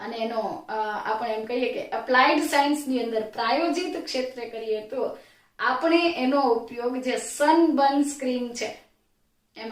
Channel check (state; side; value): identical; both; correlation 1.00